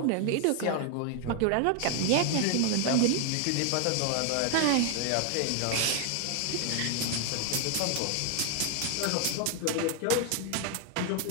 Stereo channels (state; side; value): different; both; correlation 0.00